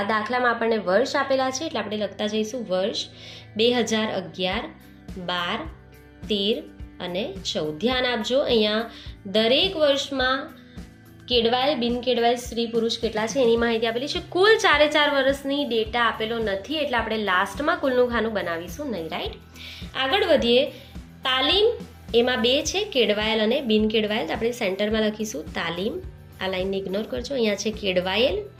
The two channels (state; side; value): identical; both; correlation 1.00